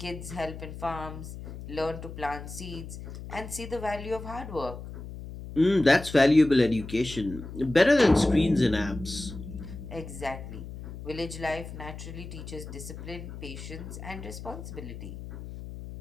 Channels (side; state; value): left; noise; hum, 11 dB below the sound